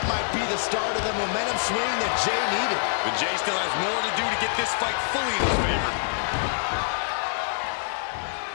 might be the start of the momentum swing that Jey needed. But Jey still has more to do to get this fight fully in his favor.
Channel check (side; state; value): right; silent; 55 dB below the other